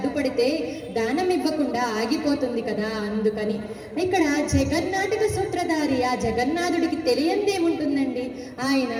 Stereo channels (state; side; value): identical; both; correlation 1.00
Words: దానం ఇవ్వకుండా ఆగిపోతుంది కదా, అందుకని. ఇక్కడ జగన్నాటక సూత్రధారి ఆ జగన్నాథుడికి తెలియందేముంటుందండి. ఆయన